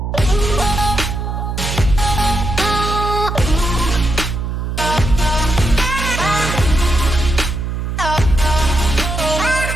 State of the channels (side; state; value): right; noise; hum, 3 dB below the sound